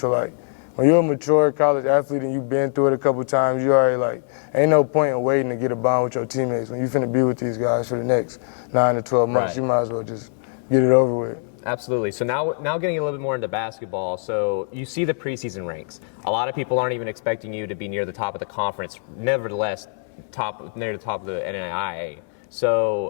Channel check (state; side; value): silent; right; digital silence